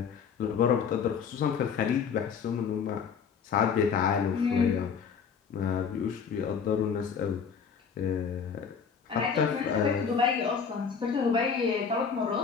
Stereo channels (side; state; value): right; quieter; 6.4 dB